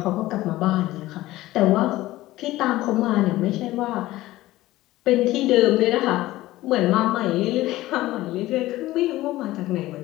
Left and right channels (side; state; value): right; quieter; 16.8 dB